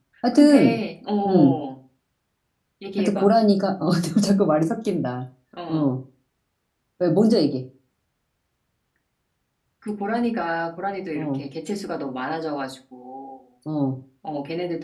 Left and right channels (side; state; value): both; identical; correlation 1.00